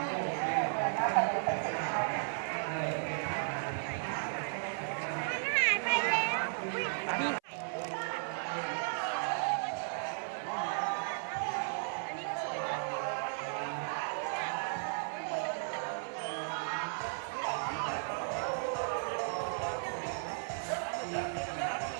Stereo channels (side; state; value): left; silent; 54 dB below the other